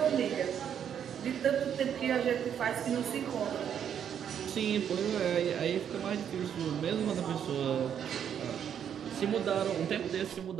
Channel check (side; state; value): left; quieter; 8.7 dB